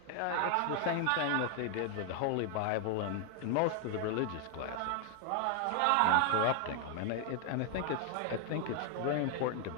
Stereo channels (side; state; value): both; different; correlation 0.00